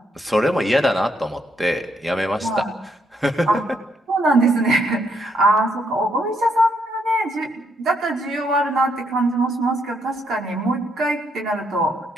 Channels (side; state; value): both; normal; correlation 0.75